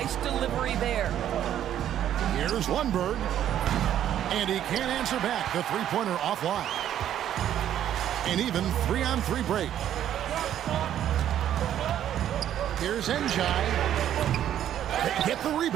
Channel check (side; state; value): left; quieter; 10.9 dB